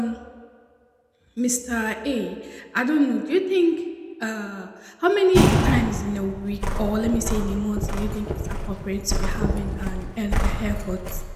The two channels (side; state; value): both; identical; correlation 1.00